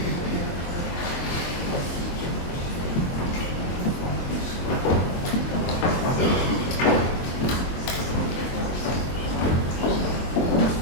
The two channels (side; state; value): right; late; 23 ms